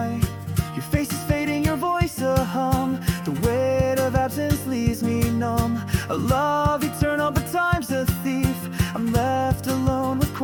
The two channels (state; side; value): identical; both; correlation 1.00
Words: Your face is fading, your voice a hum. The weight of absence leaves me numb. A love eternal, but time's a thief. I'm left alone with